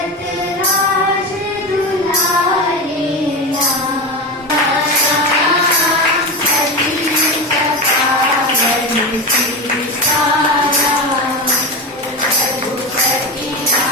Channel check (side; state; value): both; normal; correlation 0.21